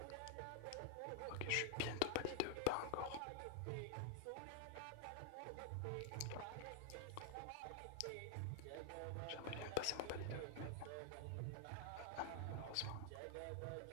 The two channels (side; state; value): both; different; correlation 0.00